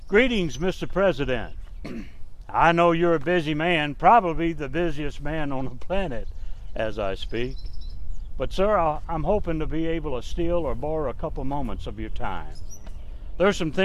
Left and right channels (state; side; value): identical; both; correlation 1.00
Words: Greetings, Mr. President. I know you're a busy man, probably the busiest man on the planet as I speak. But sir, I'm hoping to be able to steal or borrow a couple moments of your time. There's some